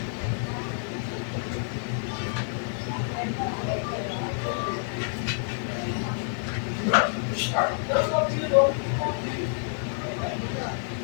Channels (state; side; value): silent; right; digital silence